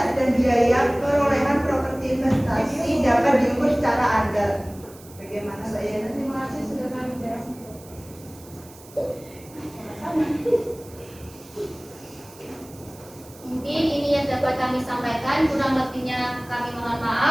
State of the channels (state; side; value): noise; right; hiss, 22 dB below the sound